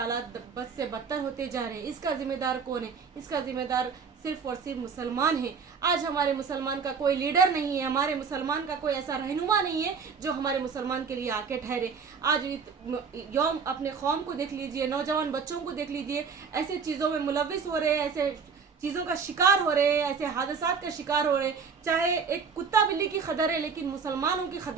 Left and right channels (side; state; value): left; quieter; 5.7 dB